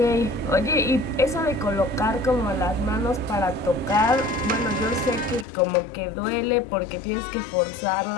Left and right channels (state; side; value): drops out; right; at 5.5 s